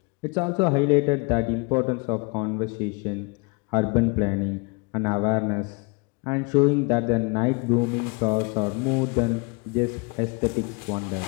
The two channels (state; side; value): quieter; right; 30.0 dB